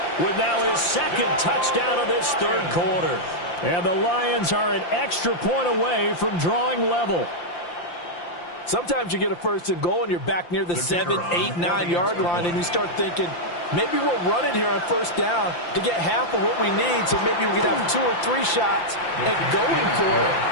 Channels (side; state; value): right; late; 5.8 ms